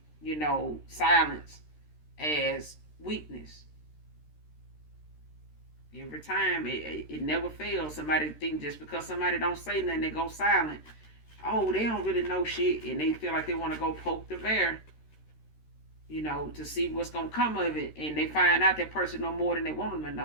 silence as weakness. Every time it never fails. Somebody think just because somebody don't say nothing, they go silent. Oh, they don't really know shit, and they feel like they want to go poke the bear, to see what's gonna come of it, and they find out that person know more than they want them to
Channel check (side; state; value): right; late; 13 ms